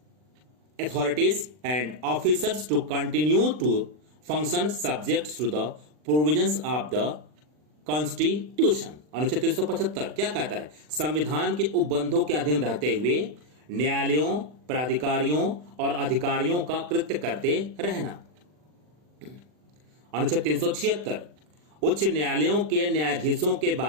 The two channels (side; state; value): left; late; 40 ms